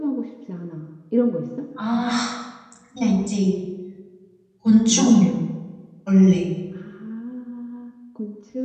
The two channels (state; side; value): identical; both; correlation 1.00